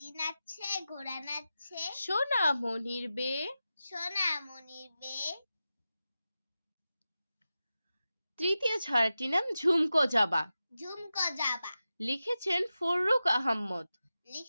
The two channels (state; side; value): inverted; both; correlation -0.93